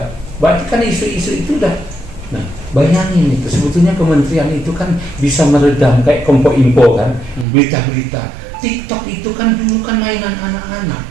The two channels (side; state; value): left; drops out; at 7.5 s